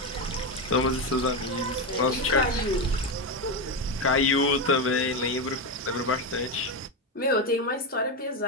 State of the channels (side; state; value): both; normal; correlation 0.12